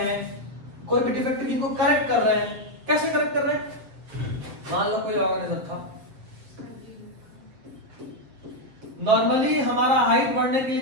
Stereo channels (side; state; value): left; late; 7.5 ms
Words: कोई भी डिफेक्टिव जीन को करेक्ट कर रहे हैं। कैसे करेक्ट कर रहे हैं? मान लो कोई ऑर्गेनिज्म था, नॉर्मली हमारा हाइट बढ़ने के लिए